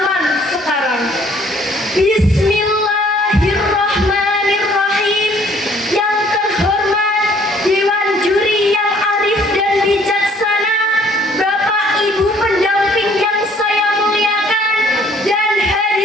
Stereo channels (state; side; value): normal; both; correlation 0.60